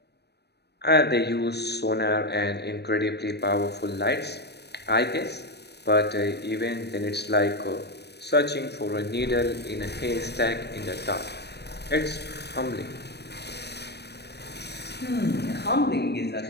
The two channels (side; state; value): right; late; 0.48 ms